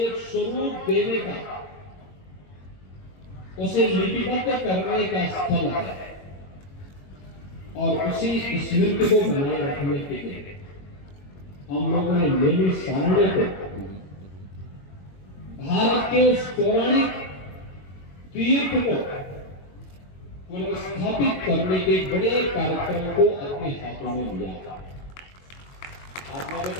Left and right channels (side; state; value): right; late; 21 ms